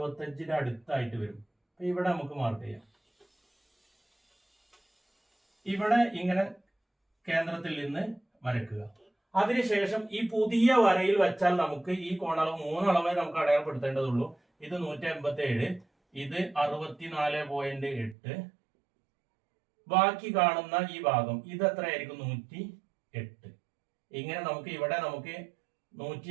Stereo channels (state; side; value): drops out; left; at 18.2 s